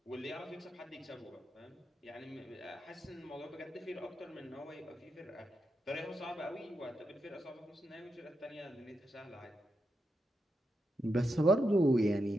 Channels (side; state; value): both; normal; correlation 0.85